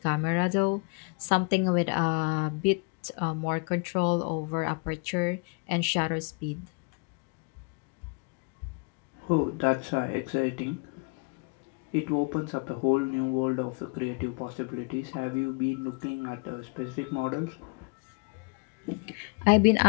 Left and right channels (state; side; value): quieter; right; 33.0 dB